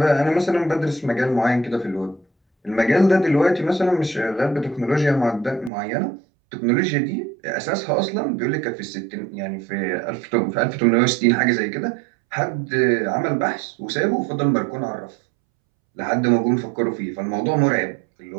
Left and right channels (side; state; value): left; drops out; at 5.7 s